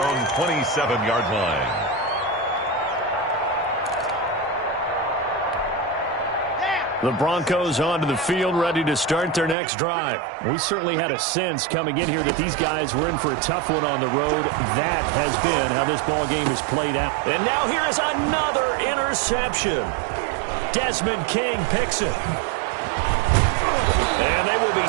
27-yard line. The Broncos onto the field, ready to start their next drive. We certainly had a sense coming in here that these guys were in for a tough one on the road. That has been how this ball game has played out. And now here is another interception. Desmond King picks it. And they will be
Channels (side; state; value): left; drops out; at 9.6 s